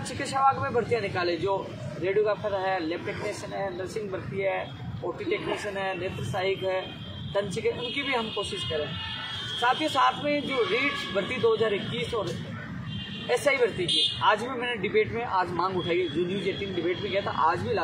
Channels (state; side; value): identical; both; correlation 1.00